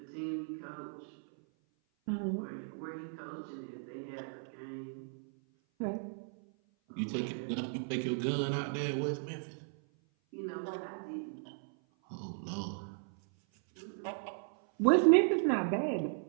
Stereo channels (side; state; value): left; silent; 54 dB below the other